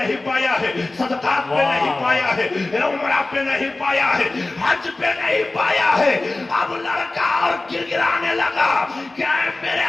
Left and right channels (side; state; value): right; quieter; 3.0 dB